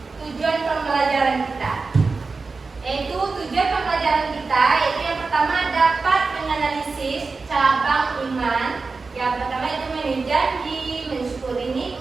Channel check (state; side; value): quieter; left; 4.2 dB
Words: tujuan pembelajaran kita, yaitu tujuan pembelajaran kita yaitu yang pertama dapat menganalisis cabang iman. Yang pertama itu memenuhi janji, mensyukuri